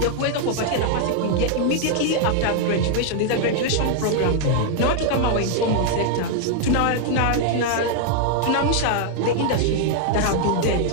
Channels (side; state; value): both; different; correlation 0.00